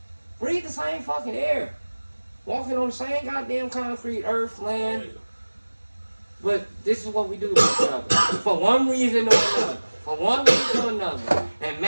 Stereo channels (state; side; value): inverted; both; correlation -1.00